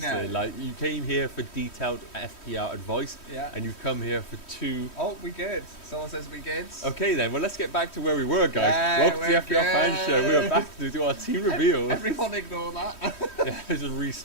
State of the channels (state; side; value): late; right; 3.1 ms